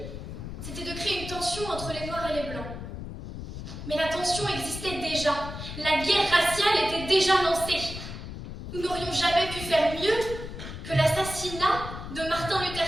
c'était de créer une tension entre les Noirs et les Blancs. Mais la tension existait déjà. La guerre raciale était déjà lancée. Nous n'aurions jamais pu faire mieux que l'assassinat de Martin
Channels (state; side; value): noise; left; rumble, 9 dB below the sound